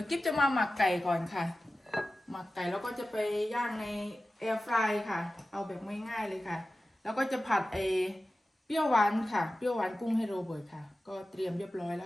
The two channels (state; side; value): normal; both; correlation 0.95